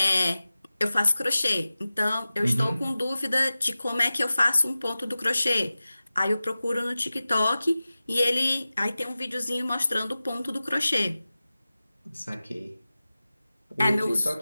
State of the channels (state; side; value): inverted; both; correlation -0.96